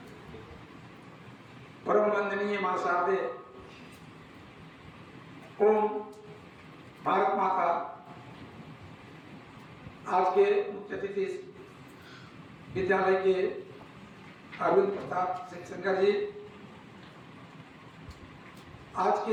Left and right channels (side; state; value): both; identical; correlation 1.00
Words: परम वंदनीय मां शारदे ओम भारत माता आज के मुख्य अतिथि विद्यालय के अरविंद प्रताप सिंह शंकर जी, आज